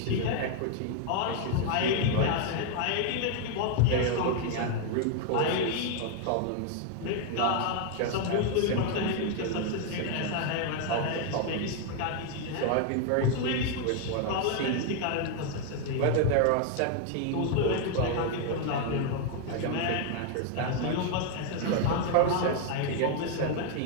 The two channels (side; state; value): both; different; correlation 0.00